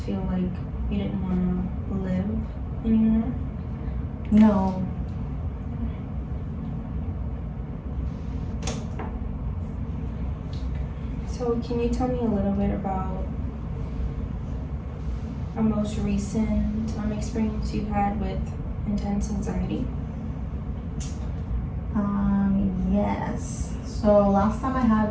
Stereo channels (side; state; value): both; identical; correlation 1.00